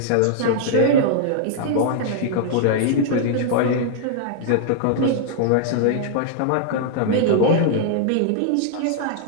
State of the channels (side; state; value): both; different; correlation -0.01